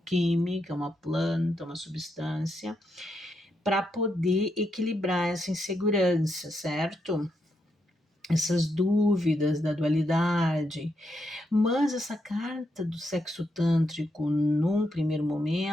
química, uma planta, uma substância, para poder equilibrar essa insegurança, certo? Essas dúvidas da dualidade. Mas essa carta do sexo tântrico, num primeiro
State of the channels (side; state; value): both; normal; correlation 0.81